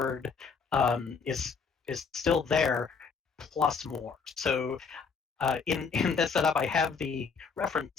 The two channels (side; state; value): right; quieter; 5.5 dB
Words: is still there, plus more. So in this setup, I have the